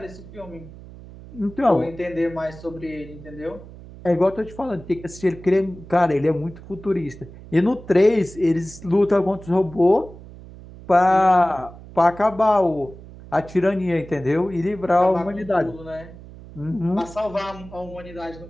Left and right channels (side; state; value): right; noise; hum, 17 dB below the sound